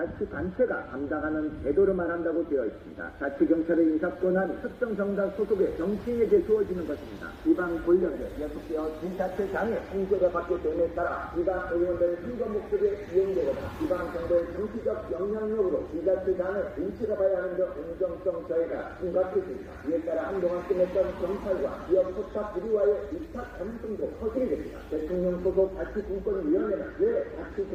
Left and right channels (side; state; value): both; identical; correlation 1.00